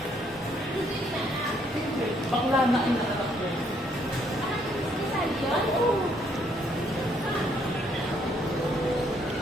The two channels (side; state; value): both; normal; correlation 0.69